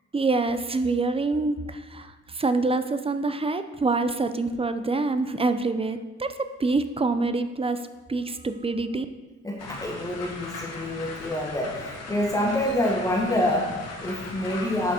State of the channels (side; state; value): both; normal; correlation 0.60